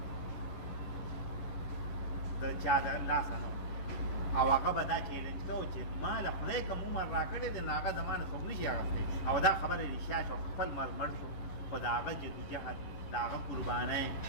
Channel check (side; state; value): right; late; 11 ms